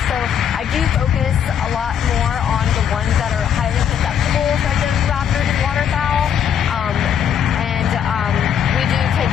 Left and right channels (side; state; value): right; quieter; 8.5 dB